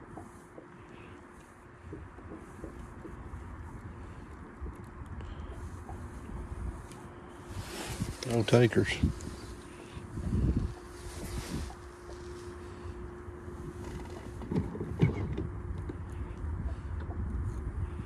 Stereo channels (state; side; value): identical; both; correlation 1.00